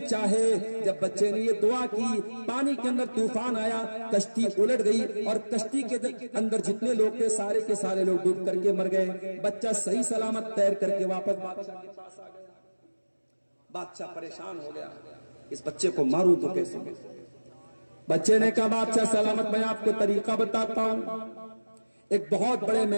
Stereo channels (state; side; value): inverted; both; correlation -1.00